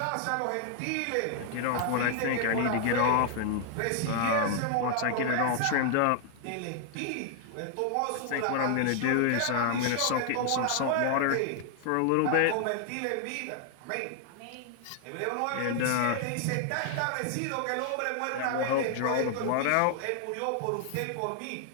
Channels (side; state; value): both; different; correlation 0.00